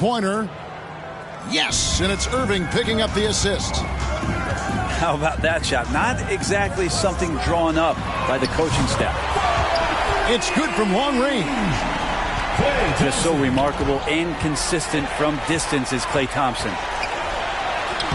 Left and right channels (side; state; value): both; identical; correlation 1.00